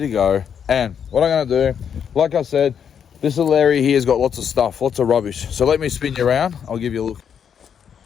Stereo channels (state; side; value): quieter; right; 7.9 dB